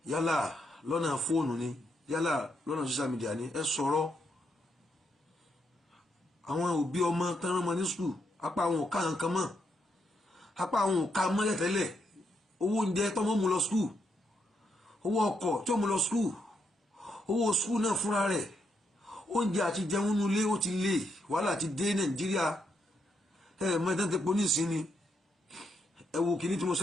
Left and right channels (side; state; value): both; normal; correlation 0.79